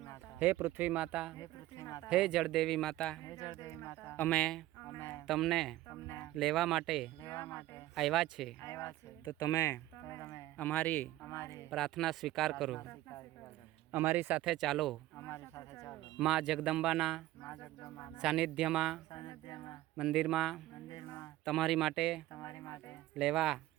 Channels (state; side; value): quieter; left; 15.7 dB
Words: હે પૃથ્વી માતા, હે જળદેવી માતા, અમે તમને લેવા માટે આવ્યા છે. તો તમે અમારી પ્રાર્થના સ્વીકાર કરો, અમારી સાથે ચાલો. માં જગદંબાના સાનિધ્યમાં મંદિરમાં તમારી માટે લેવા